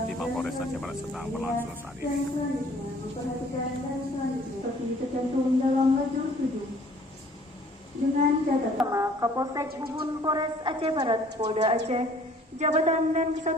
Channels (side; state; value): both; normal; correlation 0.55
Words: di Mapolres Jawa Barat sedang berlangsung saat ini. Dengan catatan Kapolsek Bubun Polres Aceh Barat Polda Aceh, Jabatan dan